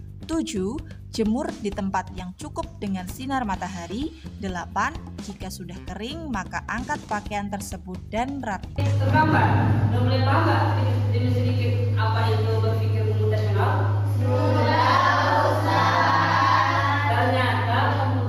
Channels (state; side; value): identical; both; correlation 1.00